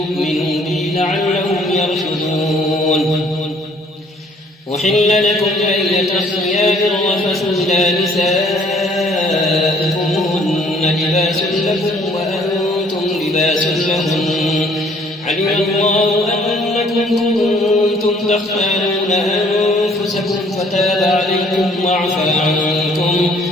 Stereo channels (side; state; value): both; normal; correlation 0.59